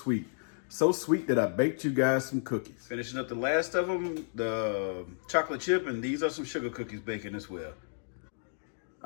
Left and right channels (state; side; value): silent; right; digital silence